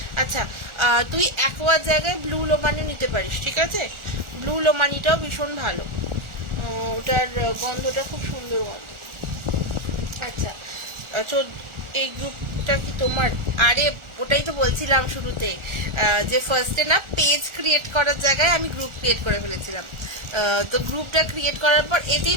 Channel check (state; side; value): late; left; 1.4 ms